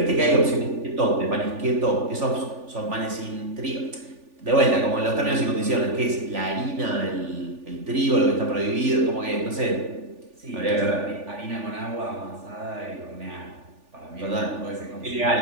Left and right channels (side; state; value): left; late; 3.4 ms